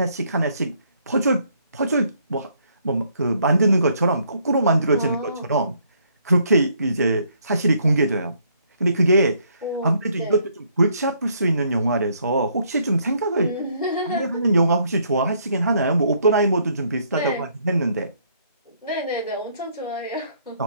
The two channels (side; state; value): both; inverted; correlation -0.68